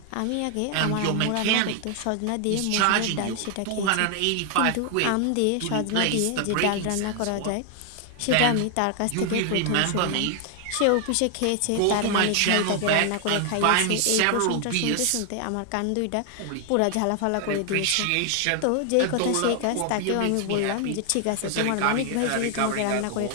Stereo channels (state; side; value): different; both; correlation 0.00